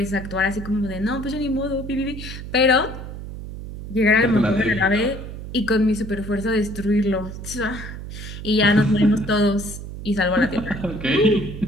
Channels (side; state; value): right; noise; hum, 10 dB below the sound